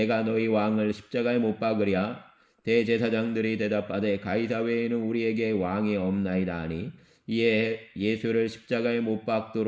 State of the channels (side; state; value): both; identical; correlation 1.00